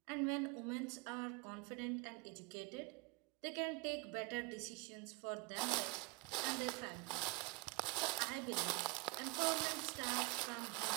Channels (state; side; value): quieter; left; 24.6 dB